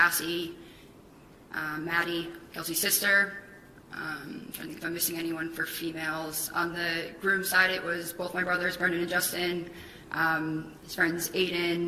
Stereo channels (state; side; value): identical; both; correlation 1.00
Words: Maddie, Kelsey's sister. I'm trying to think if I'm missing anyone for females. On the groom's side, it was both my brothers, Brendan and Justin, his friends